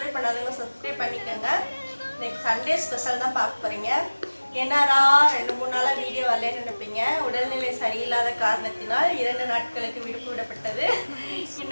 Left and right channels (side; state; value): both; inverted; correlation -1.00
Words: பண்ணாதவங்க சப்ஸ்கிரைப் பண்ணிக்கோங்க. இன்னைக்கு சண்டே ஸ்பெஷல் தான் பார்க்க போறீங்க. என்னடா 2-3 நாளா வீடியோ வரலன்னு நினைப்பீங்க. உடல்நிலை சரியில்லாத காரணத்தினால் 2 நாட்களுக்கு விடுப்பு விடப்பட்டது.